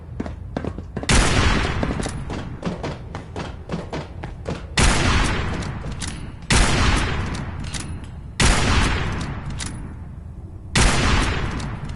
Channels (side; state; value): both; identical; correlation 1.00